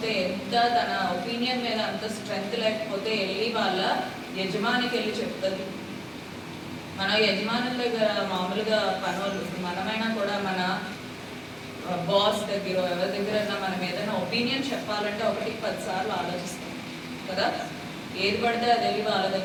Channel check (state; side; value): identical; both; correlation 1.00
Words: ఎంత తన ఒపీనియన్ మీద అంత స్ట్రెంగ్త్ లేకపోతే వెళ్ళి వాళ్ళ యజమానికి వెళ్ళి చెప్తుంది. మన యజమానుల దగ్గర మామూలుగా పనులు, మనమైనా కూడా మన బాస్ దగ్గర ఎవరి దగ్గర మనం ఏదైనా ఒపీనియన్ చెప్పాలంటే 1-10 సార్లు ఆలోచిస్తాం కదా. ఏది పడితే అది వెళ్ళి వాళ్ళ